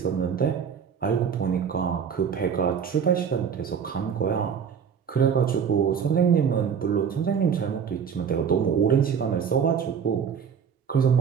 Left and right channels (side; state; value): left; quieter; 7.2 dB